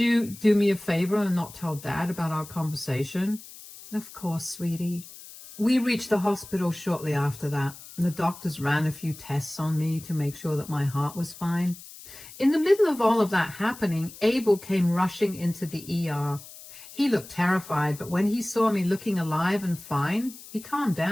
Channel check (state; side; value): noise; left; hiss, 17 dB below the sound